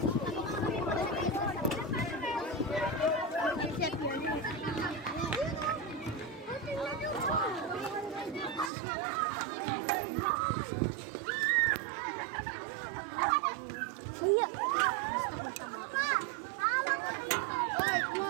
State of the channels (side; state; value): left; drops out; at 8.7 s